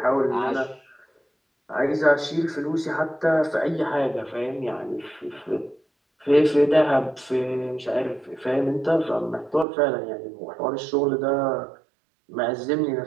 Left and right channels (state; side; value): drops out; left; at 9.7 s